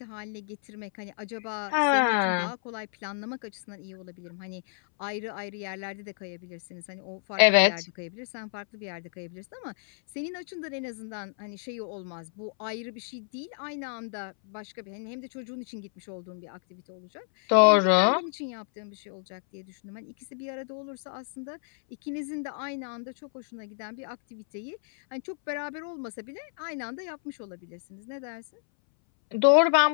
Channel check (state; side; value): silent; right; 58 dB below the other